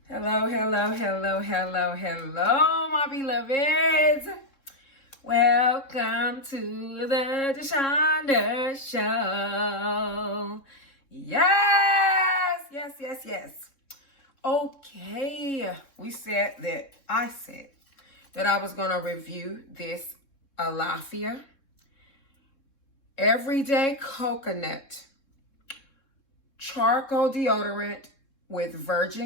Hello, hello, hello, hello, hello, my beloveds. Welcome to the Deshonda Show. Yes, yes, yes, yes. Okay, I said that I was going to review this Allafia Everyday Coconut Charcoal Deodorant with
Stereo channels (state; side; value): late; right; 3.7 ms